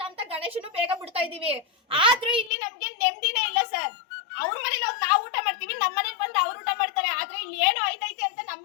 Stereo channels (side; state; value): right; drops out; at 2.5 s